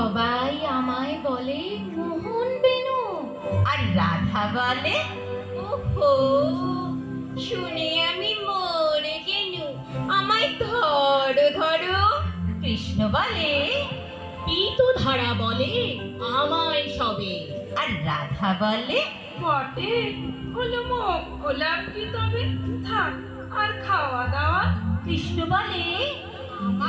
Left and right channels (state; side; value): identical; both; correlation 1.00